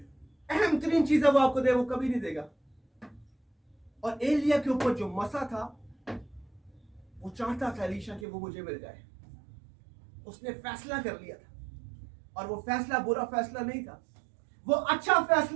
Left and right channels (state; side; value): drops out; left; at 8.2 s